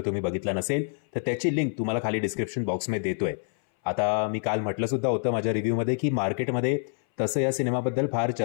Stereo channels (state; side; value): silent; right; 60 dB below the other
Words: तुम्ही बघितला नसेल तर त्याची लिंक तुम्हाला खाली डिस्क्रिप्शन बॉक्समध्ये देतोय. आता मी काल म्हटलं सुद्धा होतं माझ्या रिव्ह्यूमध्ये की मार्केटमध्ये तसं या सिनेमाबद्दल फार